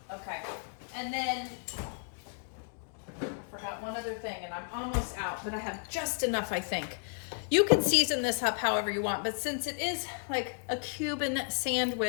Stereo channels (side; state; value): right; silent; 56 dB below the other